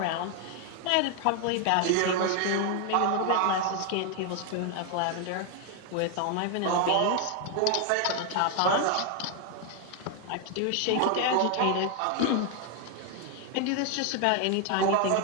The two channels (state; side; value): different; both; correlation 0.01